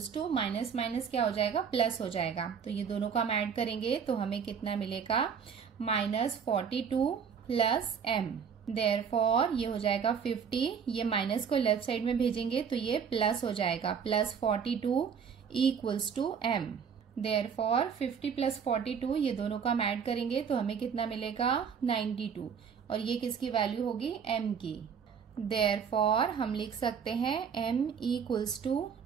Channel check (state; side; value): quieter; left; 6.9 dB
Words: टू माइनस माइनस क्या हो जाएगा प्लस हो जाएगा, तो ये दोनों को हम ऐड करेंगे तो हमें कितना मिलेगा -42 प्लस m। देयरफॉर ये हो जाएगा 50, ये माइनस को लेफ्ट साइड में भेजेंगे तो ये प्लस हो जाएगा +42 equals to m। Therefore 50 plus 42 ये दोनों को हम ऐड करेंगे तो हमें कितना मिलेगा 92, और ये किसकी वैल्यू होगी m की। देयरफॉर हम लिख सकते हैं m इक्वल्स टू